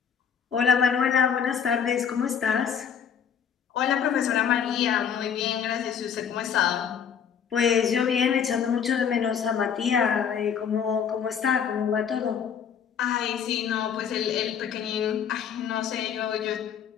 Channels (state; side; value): quieter; right; 7.6 dB